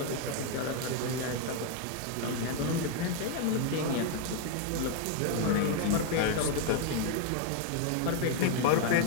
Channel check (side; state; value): both; different; correlation 0.01